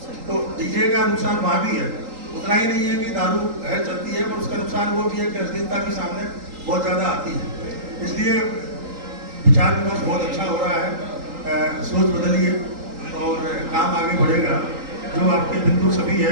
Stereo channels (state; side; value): late; left; 3.8 ms